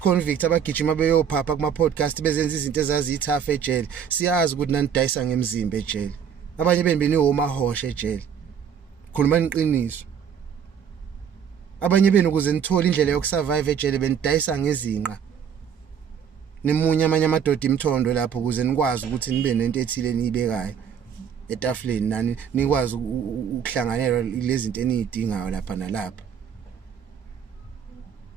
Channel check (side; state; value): left; quieter; 7.9 dB